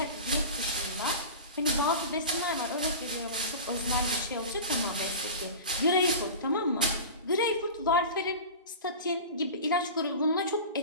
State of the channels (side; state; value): both; inverted; correlation -0.31